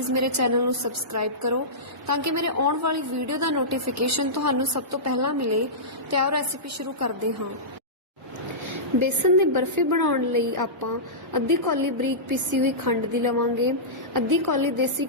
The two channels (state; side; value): normal; both; correlation -0.17